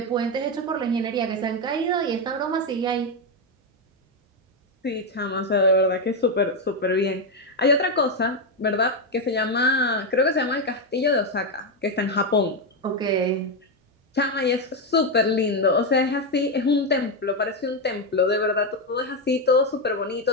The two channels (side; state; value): both; normal; correlation 0.06